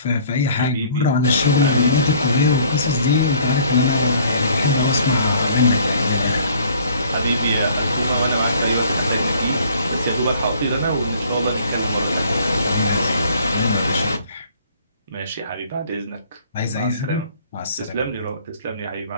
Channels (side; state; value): both; inverted; correlation -0.56